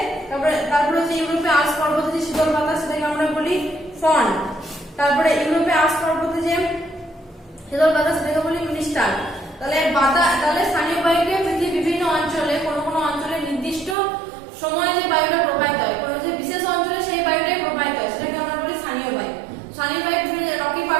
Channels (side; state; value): left; drops out; at 14.0 s